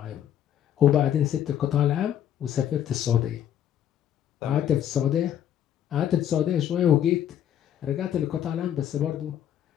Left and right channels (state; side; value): quieter; right; 10.3 dB